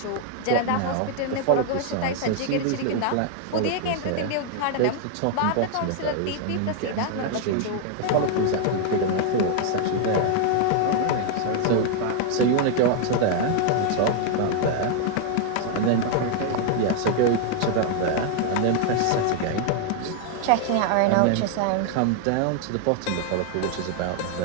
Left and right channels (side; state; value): both; different; correlation 0.00